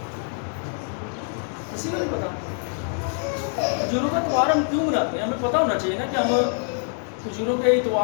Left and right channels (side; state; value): right; silent; 57 dB below the other